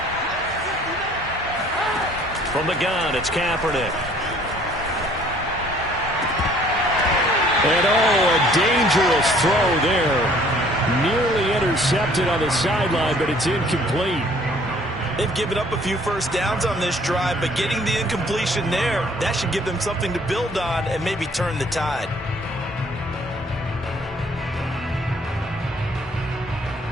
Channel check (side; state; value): both; normal; correlation 0.57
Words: From the gun, it's Kaepernick. And a dangerous throw there. Nearly intercepted on the sideline, but it's incomplete. They've given up a few first downs on this drive, but getting the incompletion there, that should give them something to build on and maybe turn the tide.